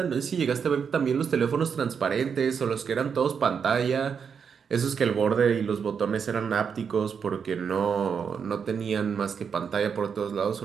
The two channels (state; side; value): quieter; left; 6.6 dB